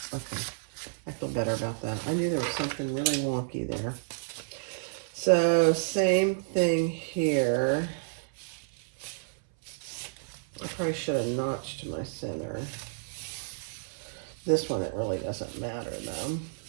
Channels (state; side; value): silent; left; 57 dB below the other